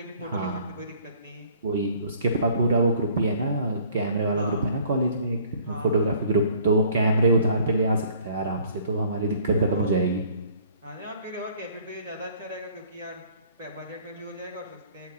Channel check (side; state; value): both; inverted; correlation -0.56